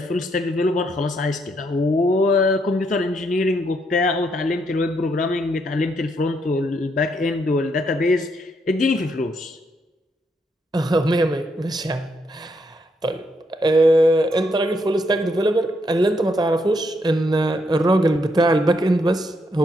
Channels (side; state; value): both; normal; correlation 0.76